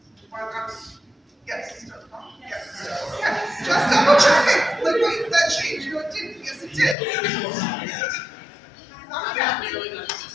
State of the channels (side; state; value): right; drops out; at 7.0 s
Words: or Mouse, yes, just double checking. Like, wait, that changed. No, it didn't. Yes, it did. Not I'm yet. not nearly that